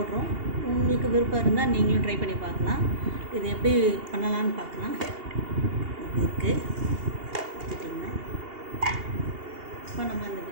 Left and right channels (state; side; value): late; left; 2.8 ms